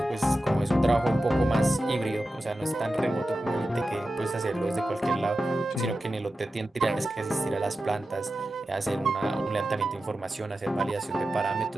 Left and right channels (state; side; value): normal; both; correlation 0.93